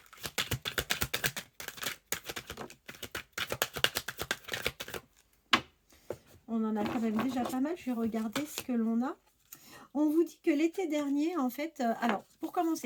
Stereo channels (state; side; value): identical; both; correlation 1.00